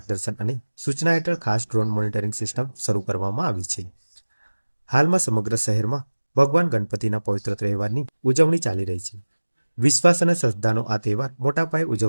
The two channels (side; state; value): both; inverted; correlation -1.00